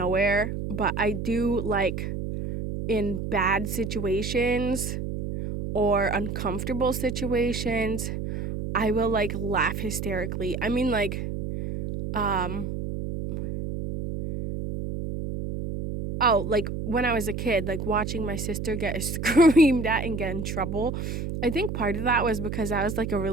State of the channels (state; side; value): noise; right; hum, 4 dB below the sound